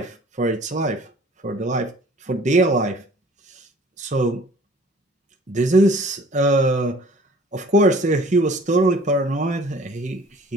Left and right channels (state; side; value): normal; both; correlation 0.51